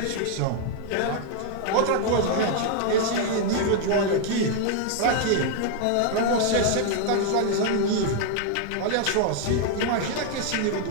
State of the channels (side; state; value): both; different; correlation 0.00